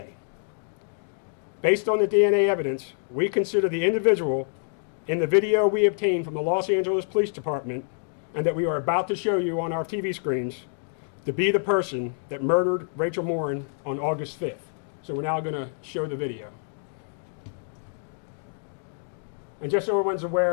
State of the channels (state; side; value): silent; right; digital silence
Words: Based on the DNA evidence, we consider the individual in the video we obtained from the Los Angeles Police Department and that we are about to show you on our TV screens to be the person that murdered Rachel Morin on August 5th. So we're now going to show the video. And just so everyone's